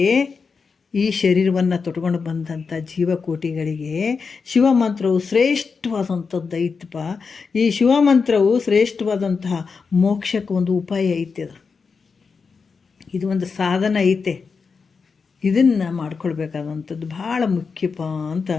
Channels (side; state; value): right; quieter; 5.2 dB